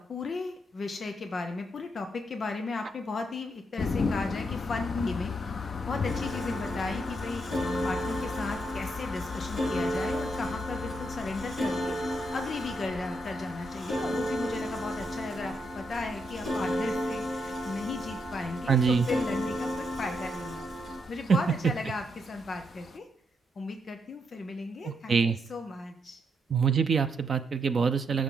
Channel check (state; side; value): normal; both; correlation 0.79